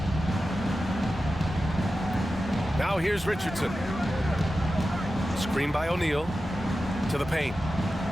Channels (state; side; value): normal; both; correlation 0.93